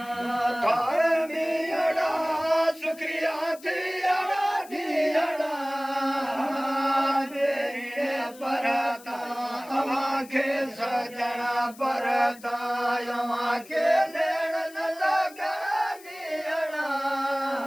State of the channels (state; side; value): noise; left; hiss, 21 dB below the sound